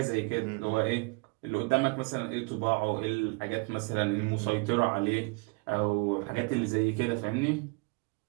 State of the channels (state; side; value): quieter; left; 29.9 dB